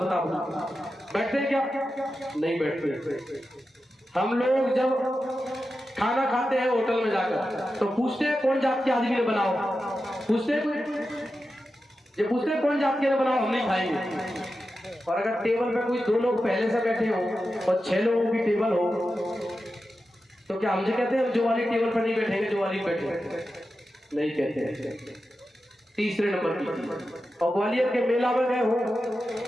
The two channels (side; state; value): both; normal; correlation 0.91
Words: बैठते हैं क्या? नहीं बैठते। हम लोग जब खाना खाते हैं होटल में जाकर तो पूछते हैं कौन जात के आदमी ने बनाओ, पूछते हैं कोई? ये पूछते हैं कौन जात के ने बनाओ, हम नहीं खाएंगे। और अगर टेबल पे कोई 2 लोग पहले से बैठे हो और 6 लोगों की टेबल हो तो क्या हमसे कहते हैं जो वाली टेबल पर नहीं बैठेंगे, जो वाली बैठे? नहीं कहते। तीसरे नंबर की। और ग्वालियर के मेला में गए हो,